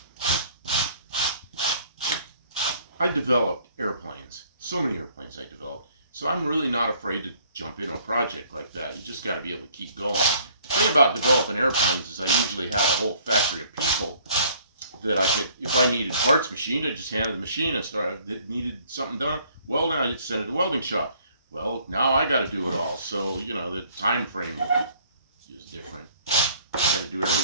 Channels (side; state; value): both; inverted; correlation -0.59